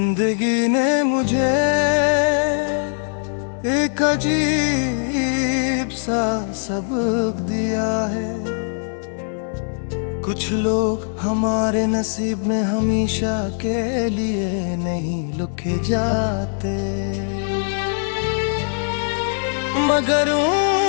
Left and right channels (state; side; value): silent; right; 65 dB below the other